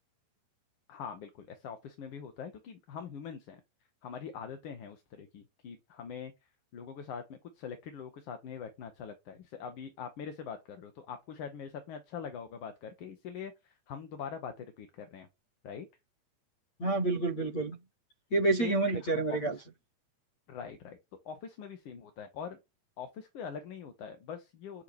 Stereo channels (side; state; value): right; late; 8.7 ms